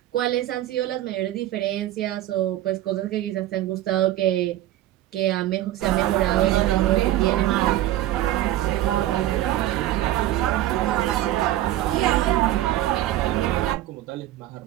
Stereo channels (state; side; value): quieter; left; 14.0 dB